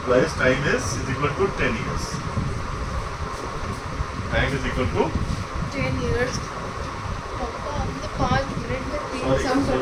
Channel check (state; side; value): identical; both; correlation 1.00